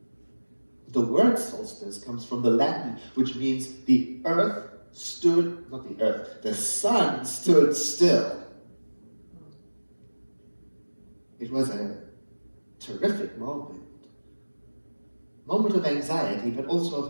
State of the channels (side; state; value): both; inverted; correlation -1.00